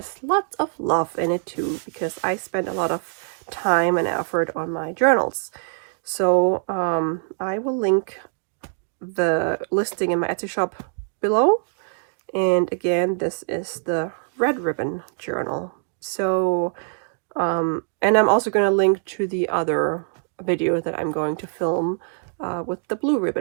lots of love in it too, because I spent a lot of time and effort on my journals. So I will link the listing in my Etsy shop below. And again, this is the red ribbon journal. So and I'm also going to link to the other video that I'm going to film with the blue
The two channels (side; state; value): left; silent; digital silence